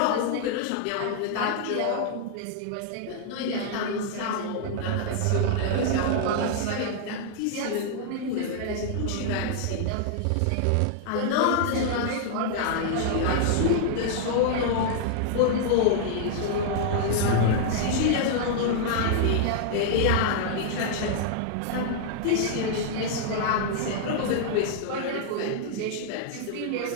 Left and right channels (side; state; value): both; different; correlation -0.01